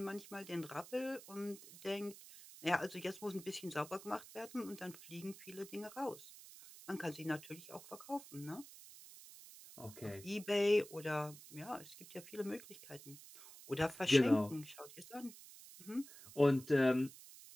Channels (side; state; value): right; noise; hiss, 17 dB below the sound